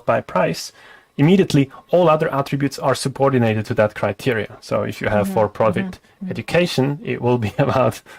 by price, immediately all other attributes are subordinated to that criteria. So if you have for-profit education, it will be about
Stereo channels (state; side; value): identical; both; correlation 1.00